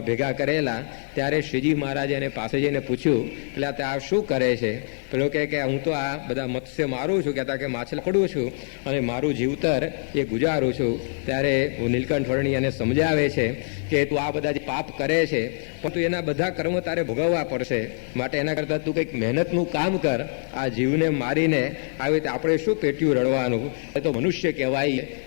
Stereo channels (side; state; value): right; silent; digital silence